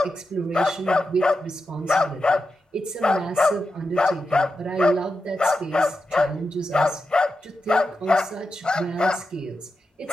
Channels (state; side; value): normal; both; correlation 0.89